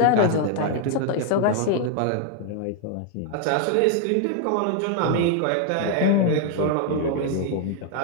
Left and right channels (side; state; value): both; different; correlation 0.00